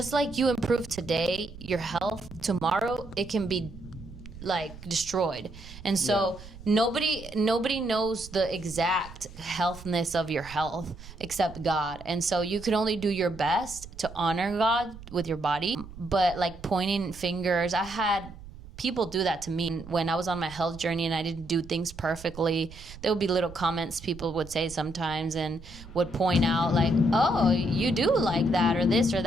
like you improve today, your health, tomorrow, it can be destroyed. And so nobody knows the exact healthness of your health except God. And so you can only do your best to honor God with your body. But pointing fingers, I had people do that to me when I was on my health journey and I didn't do things perfectly. There would be little comments people would say sometimes and would point out oh, you do like that or this or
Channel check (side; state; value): right; noise; rumble, 16 dB below the sound